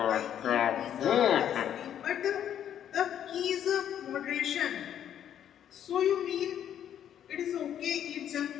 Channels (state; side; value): quieter; right; 9.9 dB